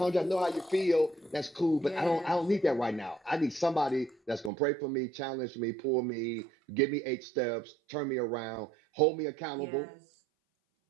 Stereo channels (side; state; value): left; drops out; at 4.5 s